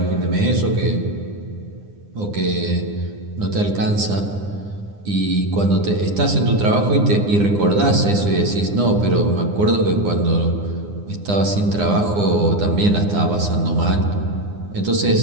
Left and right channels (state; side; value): late; left; 9.8 ms